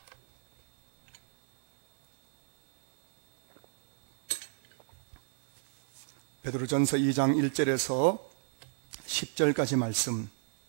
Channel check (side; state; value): left; silent; 58 dB below the other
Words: 베드로전서 2장 1절에서 10절까지 말씀,